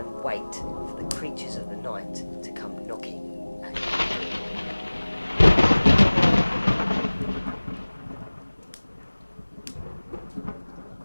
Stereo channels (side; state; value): both; inverted; correlation -1.00